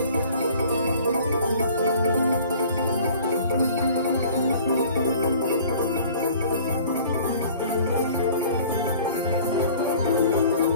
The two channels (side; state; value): both; inverted; correlation -0.49